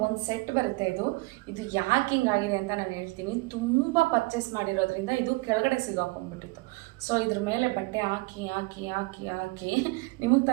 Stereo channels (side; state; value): left; quieter; 24.6 dB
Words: ಒಂದು ಸೆಟ್ ಬರುತ್ತೆ. ಇದು ಯಾಕೆ ಹಿಂಗಾಗಿದೆ ಅಂತ ನಾನು ಹೇಳ್ತೀನಿ. ತುಂಬ ಪರ್ಚೇಸ್ ಮಾಡಿರೋದ್ರಿಂದ ಇದು ಕೆಳಗಡೆ ಸಿಗಾಕೊಂಡ್ಬಿಟ್ಟಿತ್ತು. ಸೊ ಇದ್ರ ಮೇಲೆ ಬಟ್ಟೆ ಹಾಕಿ ಹಾಕಿ ಹಾಕಿ ಹಾಕಿ ನಿಮಗೆ